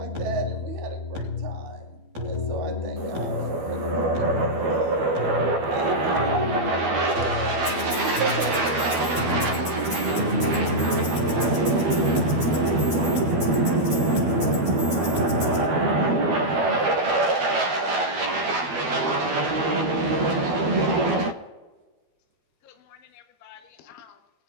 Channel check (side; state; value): left; late; 12 ms